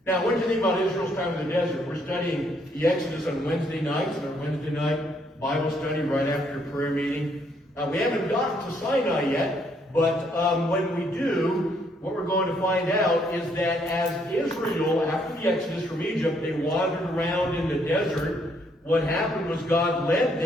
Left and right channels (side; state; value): both; normal; correlation 0.70